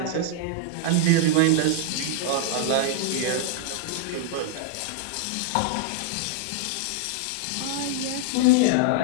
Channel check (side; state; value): both; different; correlation -0.01